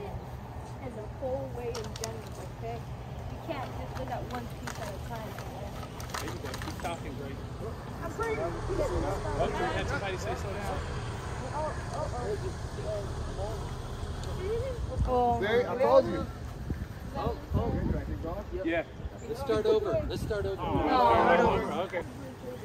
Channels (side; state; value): both; identical; correlation 1.00